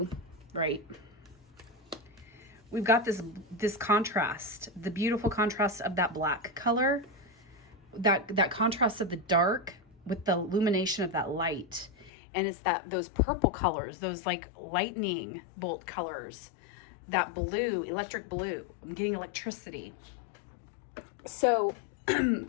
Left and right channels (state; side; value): drops out; right; at 12.1 s